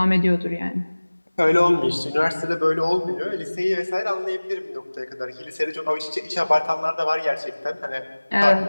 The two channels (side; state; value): both; inverted; correlation -1.00